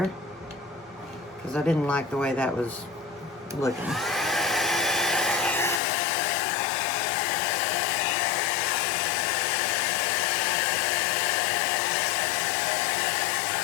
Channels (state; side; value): drops out; right; at 5.8 s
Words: because I didn't like the way that was looking.